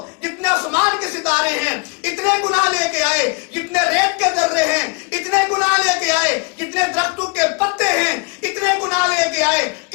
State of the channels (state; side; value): quieter; right; 31.8 dB